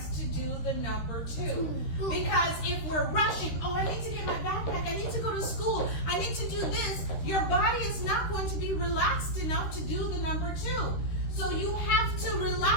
to do the number 2. Because if we're rushing, oh, I need to get my backpack, I need to go to school, I need to do this, your body is not going to be relaxed enough to do the number 2. So you have to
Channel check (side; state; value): right; late; 13 ms